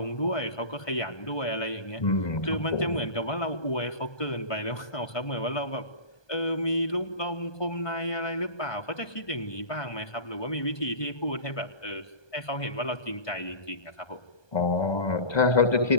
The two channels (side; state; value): right; late; 1.2 ms